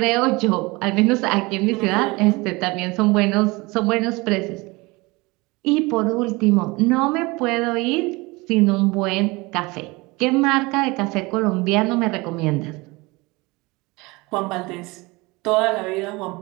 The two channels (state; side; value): quieter; left; 24.1 dB